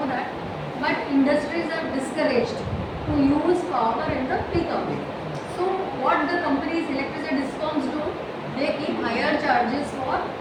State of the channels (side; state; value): both; identical; correlation 1.00